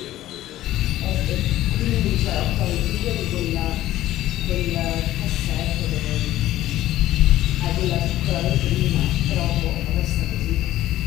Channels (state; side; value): quieter; right; 14.5 dB